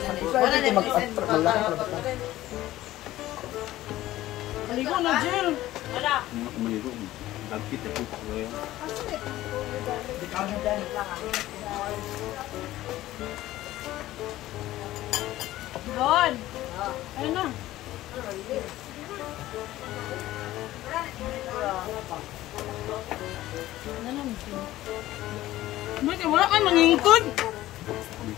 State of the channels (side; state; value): right; quieter; 15.4 dB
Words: Wala na mag-malaki. Maligo na, Jill! Wala! Maligo. Dagkit ako ko yan. Doon! Ayun na! Bakit wala kayo mangingkod?